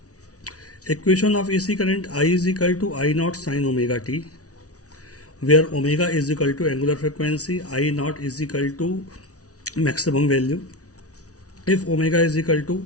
equation of AC current I is equal to I naught sin omega t, where omega is equal to angular frequency, I naught is equal to maximum value. If omega is equal to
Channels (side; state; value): right; late; 0.67 ms